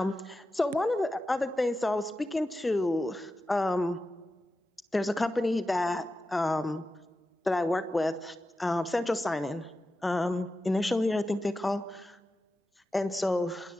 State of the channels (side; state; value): both; normal; correlation 0.92